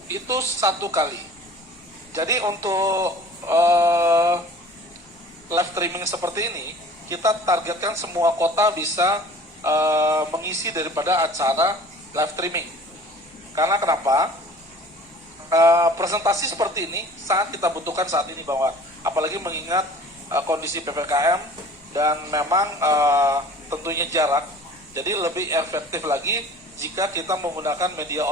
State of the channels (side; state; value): both; normal; correlation 0.46